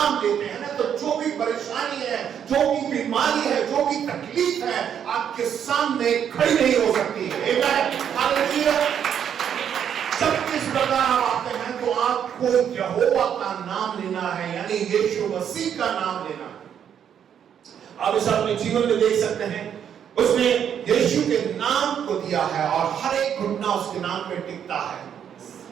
लेते हैं ना, तो जो भी परेशानी है, जो भी बीमारी है, जो भी तकलीफ है, आपके सामने खड़ी नहीं हो सकती है। हालेलुया। जब इस प्रकार आप आते हैं तो आपको यहोवा का नाम लेना है, यानी यीशु मसीह का नाम लेना है। आप इसे अपने जीवन में देख सकते हैं, उसने यीशु के नाम को दिया है और हर एक घुटना उसके नाम पे टिकता है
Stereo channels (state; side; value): quieter; left; 8.7 dB